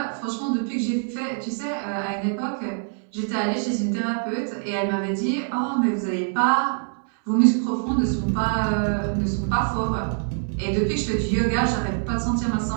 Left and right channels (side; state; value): left; silent; 62 dB below the other